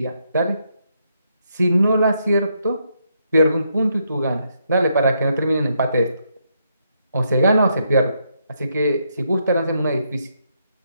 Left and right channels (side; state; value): both; inverted; correlation -0.77